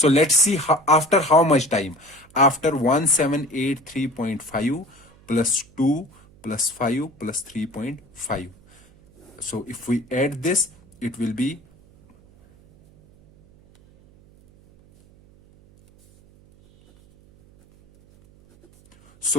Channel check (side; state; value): right; noise; hum, 27 dB below the sound